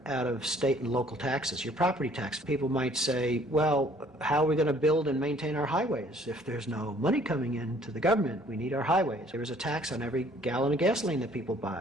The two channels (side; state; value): both; normal; correlation 0.58